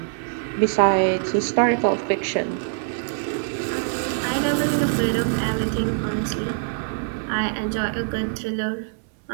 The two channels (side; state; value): left; silent; digital silence